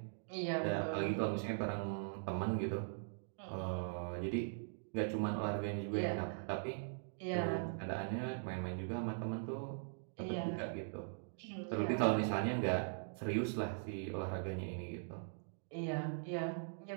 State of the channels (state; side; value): silent; left; digital silence